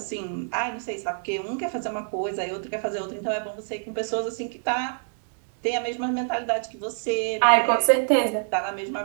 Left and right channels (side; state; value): left; silent; digital silence